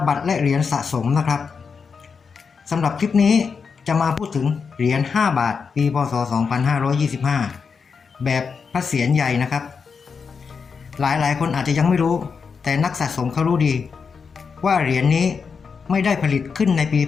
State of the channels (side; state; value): right; quieter; 5.6 dB